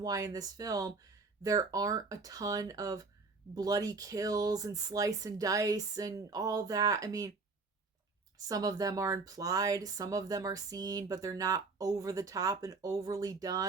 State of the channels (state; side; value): quieter; left; 4.1 dB